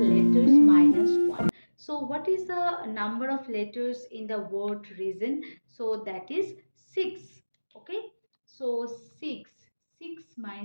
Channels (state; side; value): inverted; both; correlation -1.00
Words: minus 1. So what is the number of letters in the word reason? So that is 6. Okay, so 6